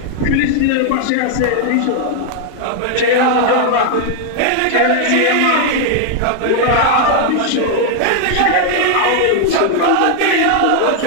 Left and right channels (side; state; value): both; different; correlation 0.00